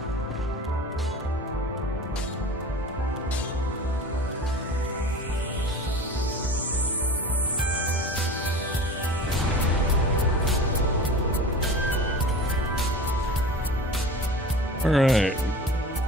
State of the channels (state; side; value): normal; both; correlation 0.36